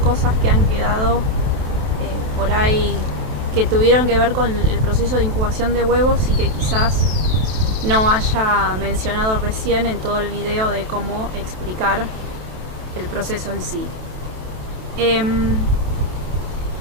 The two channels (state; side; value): late; left; 27 ms